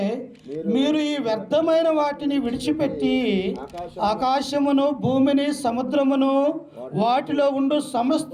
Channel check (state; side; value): identical; both; correlation 1.00